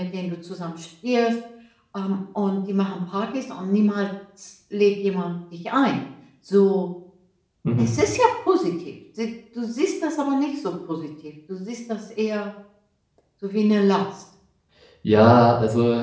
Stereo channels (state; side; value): identical; both; correlation 1.00